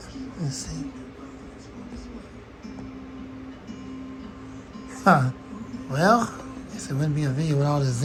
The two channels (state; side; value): identical; both; correlation 1.00